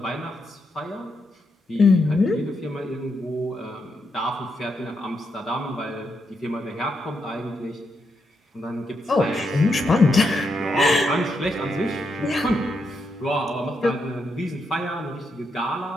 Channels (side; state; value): both; normal; correlation 0.81